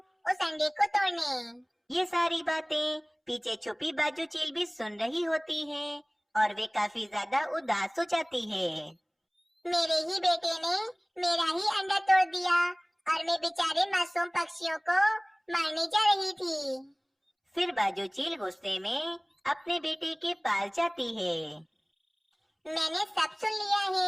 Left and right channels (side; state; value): both; identical; correlation 1.00